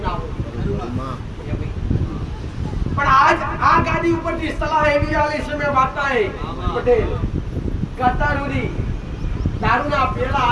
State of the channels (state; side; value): identical; both; correlation 1.00